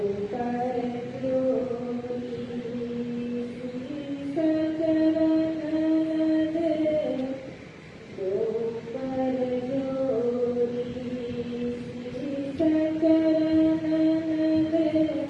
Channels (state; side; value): identical; both; correlation 1.00